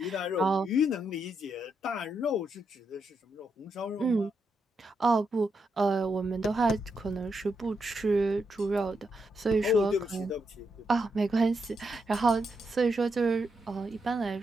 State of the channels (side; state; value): both; normal; correlation 0.82